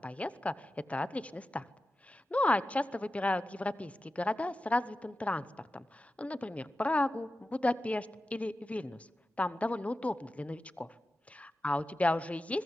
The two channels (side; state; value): both; normal; correlation 0.93